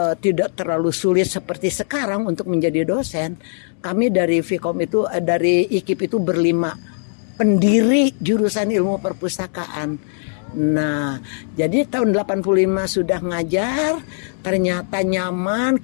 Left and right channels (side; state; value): right; silent; 65 dB below the other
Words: tidak terlalu sulit seperti sekarang untuk menjadi dosen. Kami dari Vkom itu dari IKIP itu berlima pendiri jurusan ilmu perpustakaan. Nah, jadi tahun 85 sudah ngajar, ternyata nyaman,